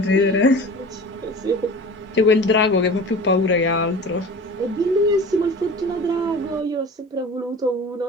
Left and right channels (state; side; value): normal; both; correlation 0.38